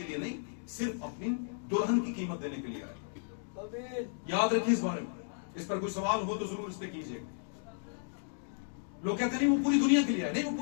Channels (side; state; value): right; silent; digital silence